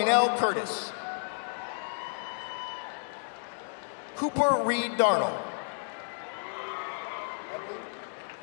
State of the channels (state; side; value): silent; right; digital silence